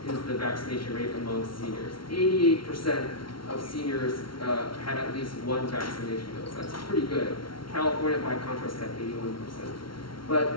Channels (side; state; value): right; late; 0.74 ms